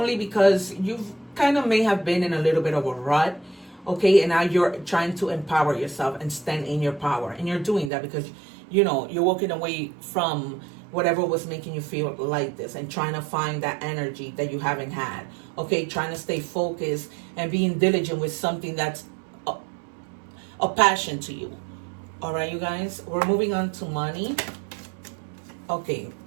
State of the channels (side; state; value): left; drops out; at 7.9 s